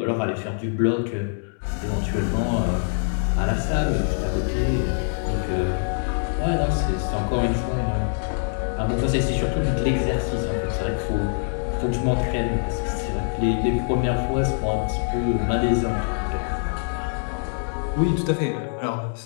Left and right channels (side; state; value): right; silent; digital silence